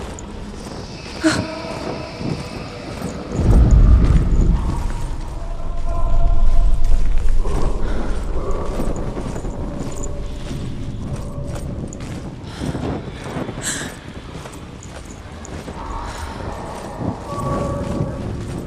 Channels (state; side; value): identical; both; correlation 1.00